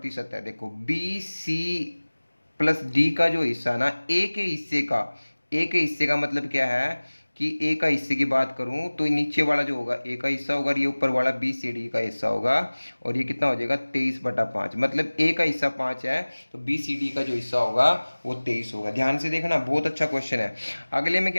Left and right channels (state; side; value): inverted; both; correlation -1.00